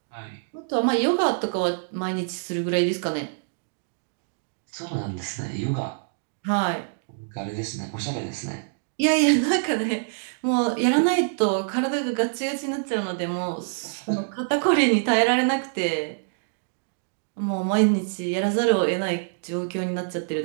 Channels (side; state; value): left; silent; digital silence